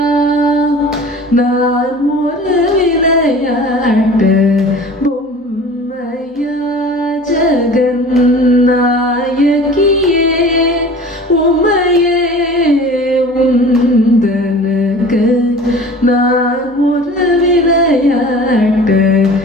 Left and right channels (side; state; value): both; normal; correlation 0.41